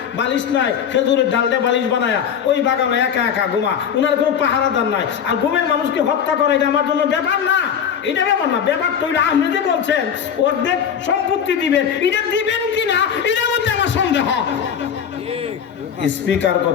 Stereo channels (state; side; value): quieter; right; 8.0 dB